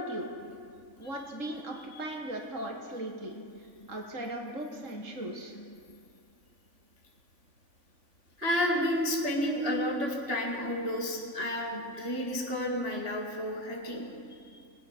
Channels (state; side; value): late; left; 3.5 ms